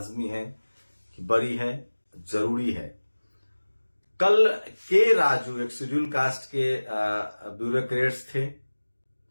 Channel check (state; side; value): inverted; both; correlation -1.00